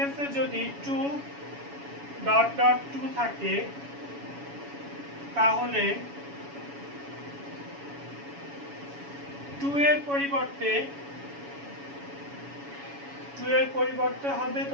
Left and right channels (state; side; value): late; left; 7.1 ms